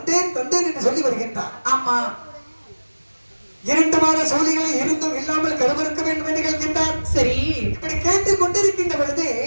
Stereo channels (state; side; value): inverted; both; correlation -1.00